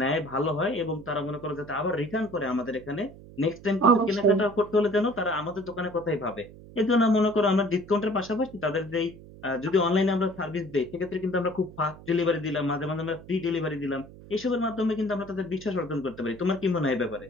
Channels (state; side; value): noise; right; hum, 18 dB below the sound